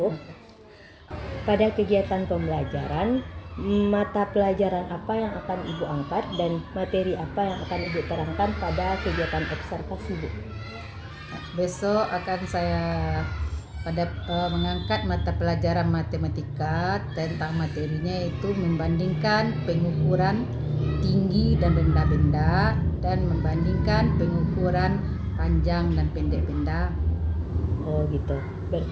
Pada kegiatan pembelajaran, mata pelajaran apa yang akan Ibu angkat dan materi apa yang akan Ibu terangkan pada kegiatan observasi Bu? Besok akan saya mengangkat mata pelajaran matematika. Tentang materinya itu membandingkan pengukuran tinggi dan rendah benda dan membandingkan pengukuran panjang dan pendek benda. Oh gitu.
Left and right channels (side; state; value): both; identical; correlation 1.00